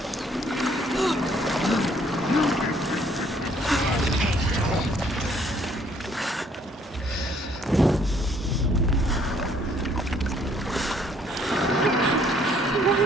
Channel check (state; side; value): normal; both; correlation 0.64